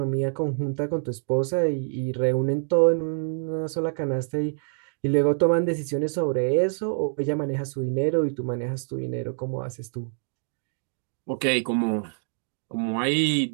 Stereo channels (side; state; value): left; silent; digital silence